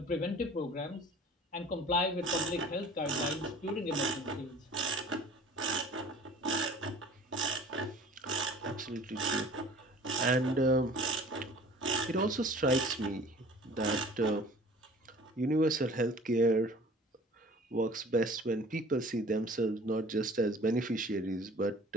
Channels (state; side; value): normal; both; correlation 0.47